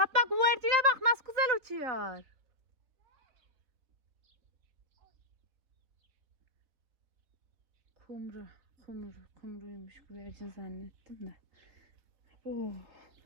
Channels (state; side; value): late; left; 3.8 ms